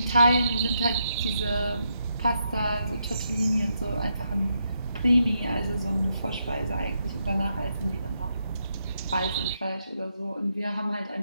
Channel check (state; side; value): inverted; both; correlation -0.80